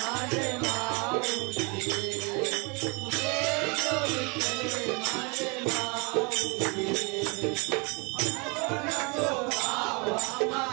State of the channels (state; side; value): quieter; left; 30.5 dB